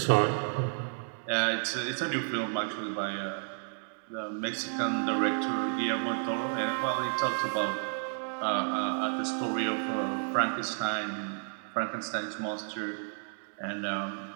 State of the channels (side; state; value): left; silent; digital silence